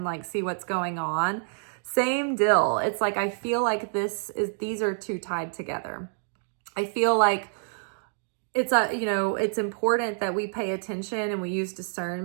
like see what's going on. Same deal. It's like, I feel like these are two tied together. I feel like it's important that we pay attention and we use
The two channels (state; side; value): silent; left; digital silence